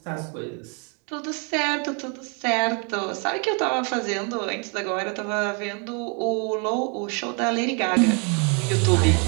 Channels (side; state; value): left; quieter; 36.5 dB